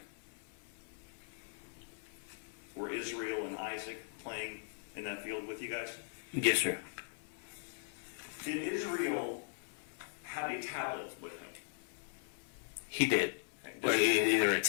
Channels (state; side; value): silent; right; 52 dB below the other